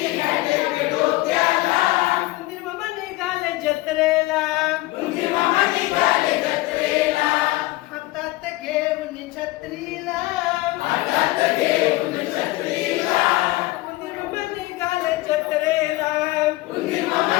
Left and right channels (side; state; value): right; quieter; 19.2 dB